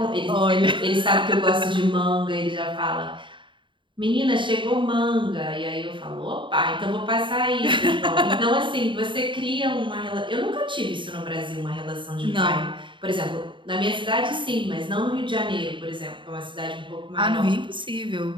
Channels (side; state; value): left; late; 0.24 ms